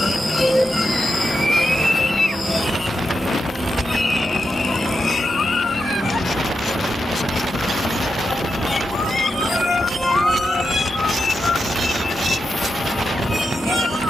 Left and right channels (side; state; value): both; normal; correlation 0.87